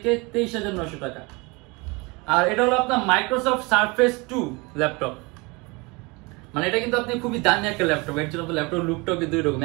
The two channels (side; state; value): left; quieter; 26.6 dB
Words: 23,900 টাকা। আর এটা হলো আপনার মাইক্রোসফট সারফেস 2 ল্যাপটপ। মানে এটা কিন্তু আপনি খুবই দামি একটা ল্যাপটপ, এর জন্য ল্যাপটপ লুকটাও কিন্তু এরকম